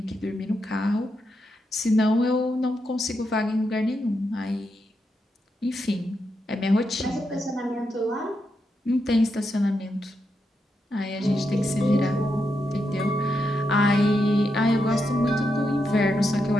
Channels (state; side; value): normal; both; correlation 0.84